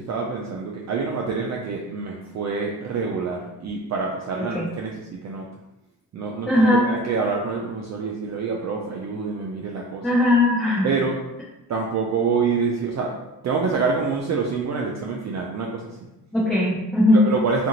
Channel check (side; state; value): both; normal; correlation 0.39